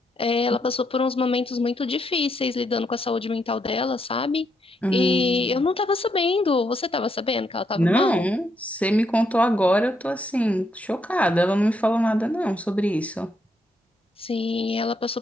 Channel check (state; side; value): normal; both; correlation 0.77